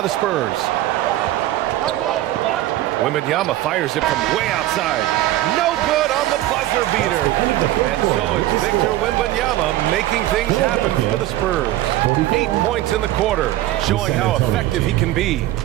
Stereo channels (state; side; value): quieter; left; 15.0 dB